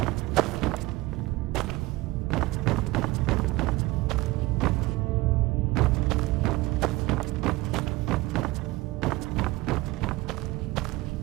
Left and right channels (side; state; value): left; quieter; 19.9 dB